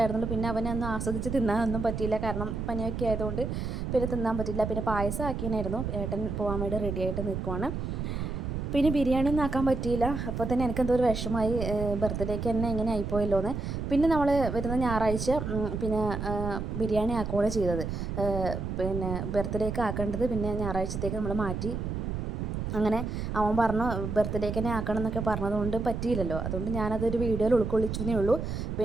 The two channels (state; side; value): noise; right; rumble, 3 dB below the sound